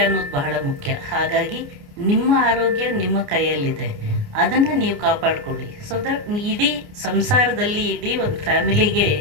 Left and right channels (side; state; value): left; late; 29 ms